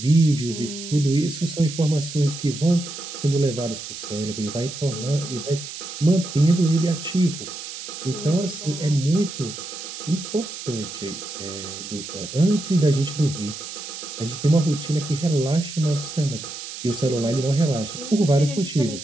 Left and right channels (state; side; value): noise; right; hiss, 10 dB below the sound